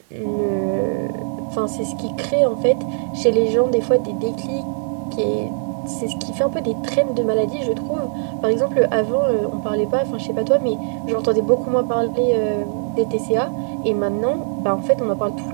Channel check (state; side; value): silent; left; digital silence